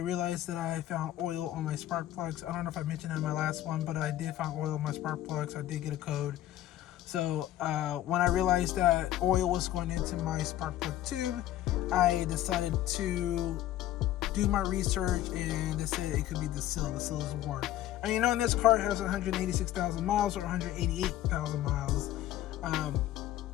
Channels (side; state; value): right; quieter; 13.4 dB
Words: that I found oil on my spark plugs. I don't know if I mentioned that in my last one, but I did find oil on my spark plugs. I did get a code. So when I realized that oil was going into my spark plug tube, I decided to do my research, and they said it could be the seal. The seal is worn. And you know, in this car, it has 186,000 miles or 188,000 miles.